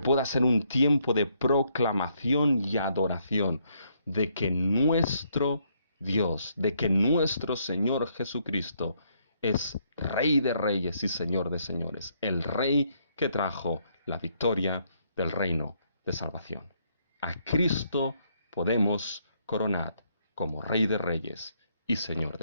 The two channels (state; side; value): inverted; both; correlation -0.72